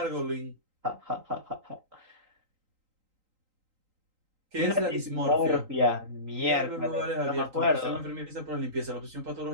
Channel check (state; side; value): late; left; 3.8 ms